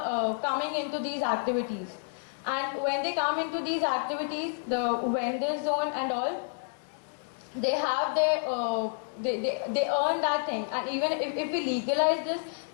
coming into these activities. And when they come into these activities, the vendor zone and all, they have their they earn that thing, and even if we legalize this,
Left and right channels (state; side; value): silent; right; digital silence